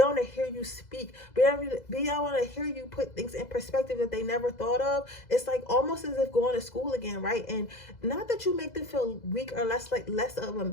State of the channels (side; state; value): right; late; 2.0 ms